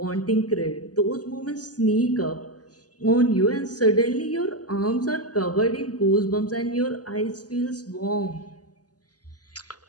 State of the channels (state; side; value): late; right; 0.68 ms